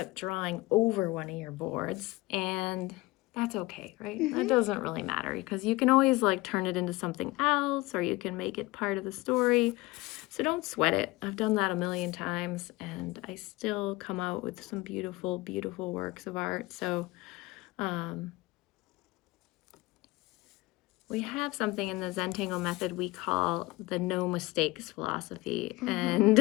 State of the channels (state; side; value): quieter; right; 20.8 dB